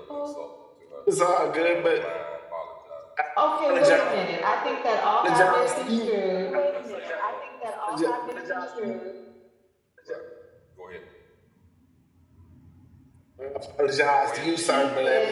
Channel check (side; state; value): both; identical; correlation 1.00